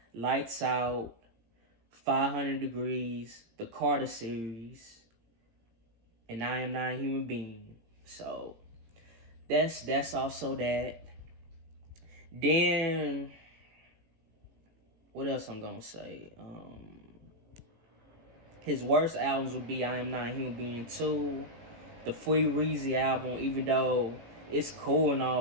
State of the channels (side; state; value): left; late; 18 ms